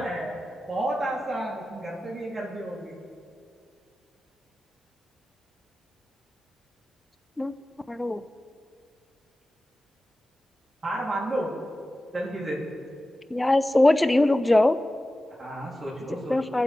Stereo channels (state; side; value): normal; both; correlation 0.95